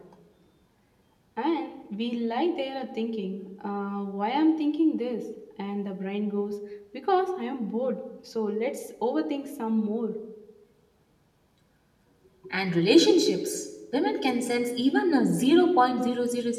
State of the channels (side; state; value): both; identical; correlation 1.00